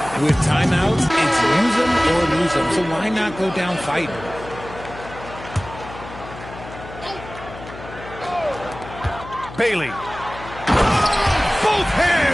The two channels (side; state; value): left; noise; hum, 14 dB below the sound